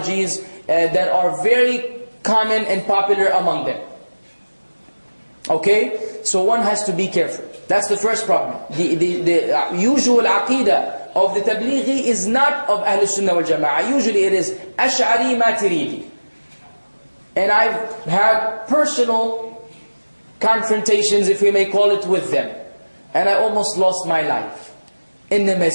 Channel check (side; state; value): both; inverted; correlation -1.00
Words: that are very common and popular among them. Okay? So one has to be careful. That's the first problem. The usual aqidah of the Tableeghi is not of Ahl Sunnah wal Jama'ah. Usually it is Ash'ari Maturidi. And I've had personal confrontations, if we may call it, with them. And I almost lost my life in the